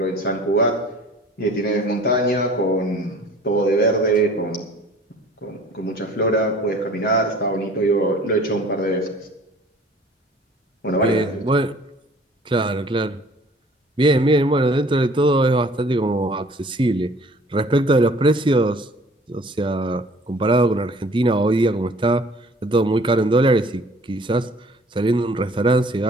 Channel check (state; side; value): normal; both; correlation 0.51